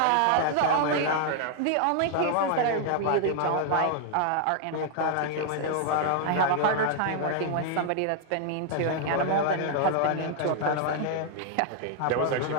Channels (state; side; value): different; both; correlation 0.00